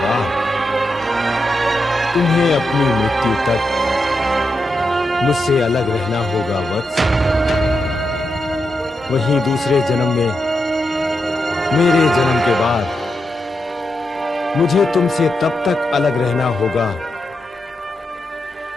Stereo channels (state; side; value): normal; both; correlation 0.86